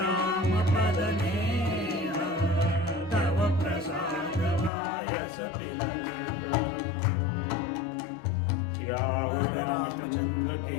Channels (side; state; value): right; drops out; at 4.7 s